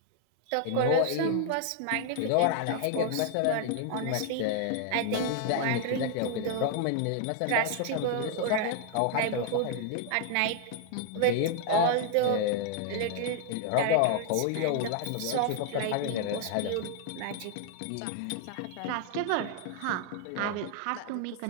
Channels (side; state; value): both; different; correlation 0.00